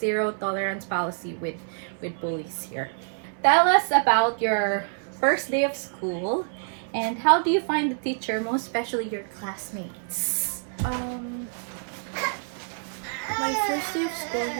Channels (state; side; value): silent; left; 60 dB below the other